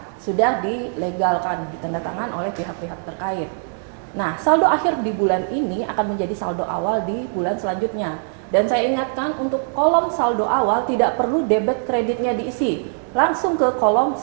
sudah dilegalkan, ditandatangan oleh pihak-pihak terkait. Nah, saldo akhir di bulan ini akan menjadi saldo awal di bulan selanjutnya. Dan saya ingatkan untuk kolom saldo awal tidak perlu debit kreditnya diisi, langsung ke kolom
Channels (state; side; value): silent; left; 61 dB below the other